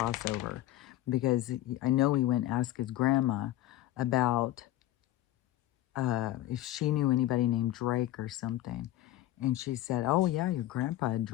because I know he went and asked his grandma about if she knew anybody named Drake or something. And she said, "Oh yeah, your grandpa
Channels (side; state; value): right; quieter; 14.5 dB